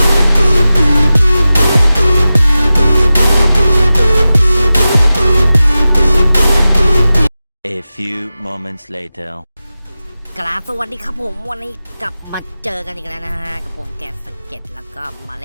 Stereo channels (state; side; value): inverted; both; correlation -0.94